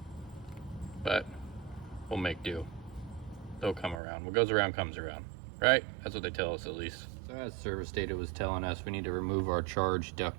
But we'll make do. They'll come around. What goes around comes around, right? That's what they tell us, at least. So as service data was telling us, we need to remove our charge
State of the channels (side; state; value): left; drops out; at 4.0 s